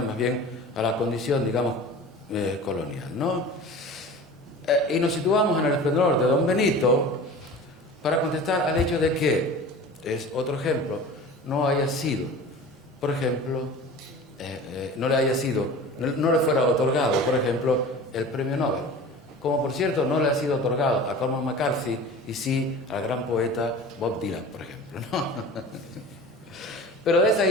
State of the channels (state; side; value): normal; both; correlation 0.38